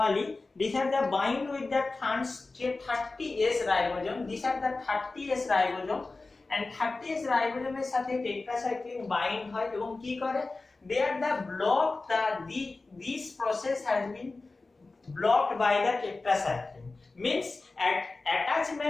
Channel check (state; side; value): quieter; right; 3.5 dB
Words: these are the bind with the 30S ribosome. These are the 30S ribosome, and 30S ribosome এর সাথে tetracycline bind হয় এবং কি করে, they are the block this process has been blocked by the tetracycline, means